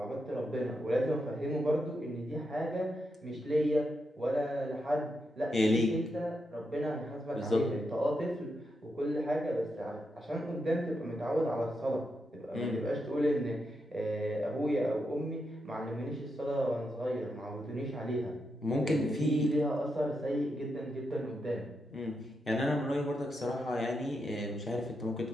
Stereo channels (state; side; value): normal; both; correlation 0.84